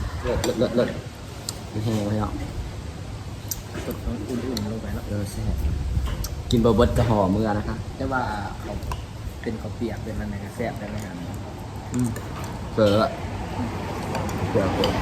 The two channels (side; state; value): both; identical; correlation 1.00